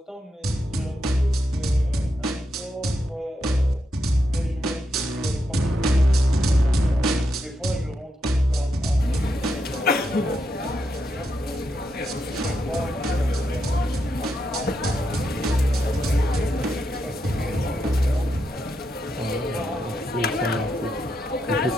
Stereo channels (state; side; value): normal; both; correlation 0.83